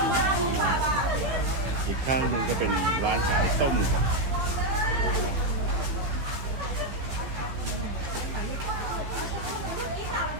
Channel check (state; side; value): late; left; 15 ms